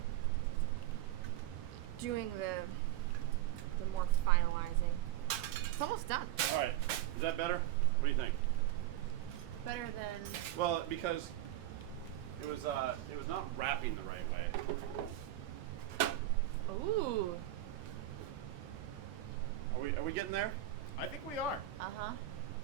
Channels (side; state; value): left; quieter; 13.9 dB